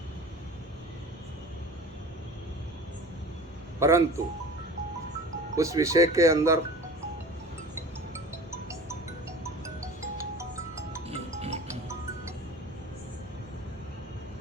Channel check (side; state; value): both; normal; correlation 0.39